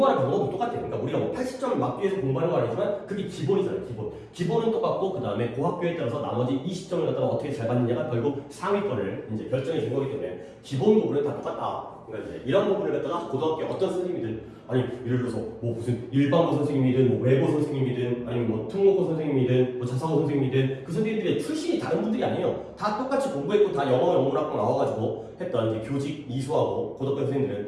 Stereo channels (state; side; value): identical; both; correlation 1.00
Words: 방법도 똑같아요. 그러니까 우리가 뭐 80점을 막기 위해서 공부하는 거 아니지만 그게 기본이잖아요. 기본은 똑같고 그 다음에 그 학교에 따라서 나머지 20점을 갖다가 어떻게 잘 받느냐가 결국 상위권을 이제 결정해 준 거기 때문에 기본 부분은 다 똑같다. 그러니까 이제 이런 부분을 갖다가 고등학교 어떤 선생님이든 아니 예를 들어서 뭐 무슨 일반고 선생님이든 뭐 외고 선생님이든 아니면 뭐 특목고 선생님이든 뭐 자사고 선생님이든 그 선생님들의 출신이 다른 분들이 아니에요. 다 똑같이 공부했고 다 영문학과 나와가지고 했던 이제 교직 이수하고 고등학교